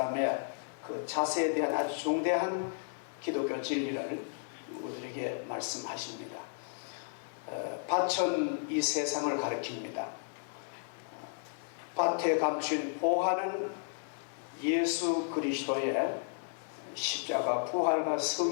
그 자세에 대한 아주 중대한 기독교 진리를 우리에게 말씀하십니다. 밭은 이 세상을 가리킵니다. 밭에 감춘 보화는 예수 그리스도의 십자가 부활과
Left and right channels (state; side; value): silent; right; digital silence